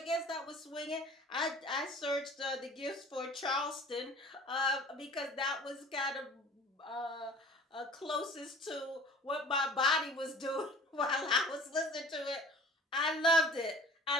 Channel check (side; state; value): both; normal; correlation 0.46